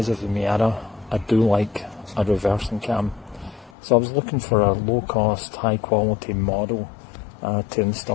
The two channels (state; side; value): drops out; right; at 3.7 s